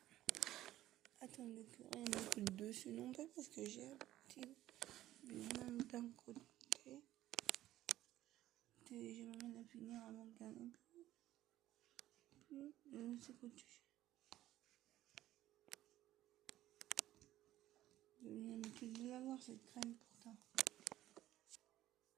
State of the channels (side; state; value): left; quieter; 14.3 dB